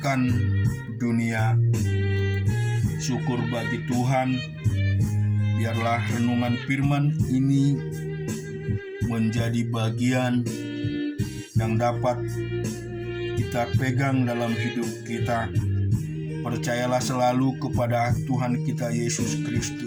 dunia. Syukur bagi Tuhan. Biarlah renungan firman ini menjadi bagian yang dapat kita pegang dalam hidup kita. Percayalah selalu kepada Tuhan kita Yesus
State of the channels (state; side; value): identical; both; correlation 1.00